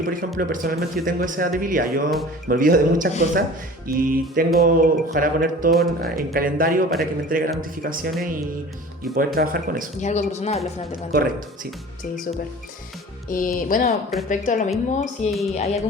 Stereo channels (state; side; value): normal; both; correlation 0.41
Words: por ejemplo, personalmente yo tengo esa debilidad, yo me olvido de muchas cosas y ojalá poner todo en calendario para que me entregue las notificaciones y poder trabajar con eso. Y es algo personal al final de cuentas. Correcto, sí. Sí, súper. Y bueno, respecto a lo mismo, si hay